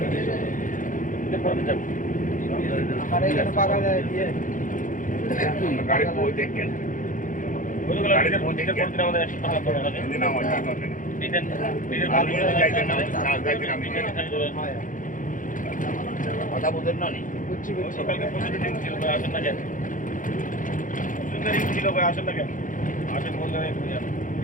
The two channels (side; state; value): right; late; 0.38 ms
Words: আমার এখানে পাকা যায় দিয়ে গাড়ি বই দেখেন গাড়িতে পৌঁছে করতে আমাদের 100 টাকা করে লাগে দিন আমার কি করবেন দিতেন আমি যাইতে না যাইতে না আমি কথা বুঝেন না নি বুঝছি বুঝছি সকালকে প্রচুর রিং ছিল ভাই আসেন না কেন প্রচুর রিং ছিল ভাই আসেন না কেন আসেন বললে